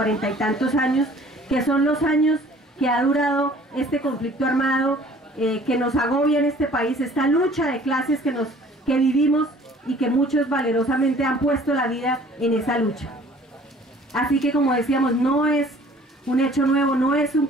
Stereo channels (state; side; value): normal; both; correlation 0.52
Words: y tantos años, que son los años que ha durado este conflicto armado que nos agobia en este país, esta lucha de clases que vivimos y que muchos valerosamente han puesto la vida en esa lucha. Así que, como decíamos, no es un hecho nuevo, no es un